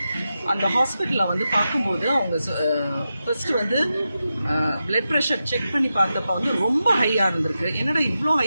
அந்த ஹாஸ்பிட்டலில் வந்து பார்க்கும்போது அவங்க ஃபஸ்ட்டு வந்து பிளட் ப்ரெஷர் செக் பண்ணி பார்த்தப்ப வந்து ரொம்ப ஹையாக இருந்திருக்கு. என்னடா இவ்வளோ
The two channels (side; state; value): both; inverted; correlation -0.90